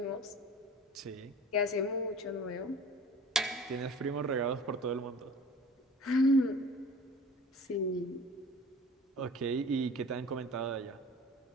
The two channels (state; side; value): normal; both; correlation 0.43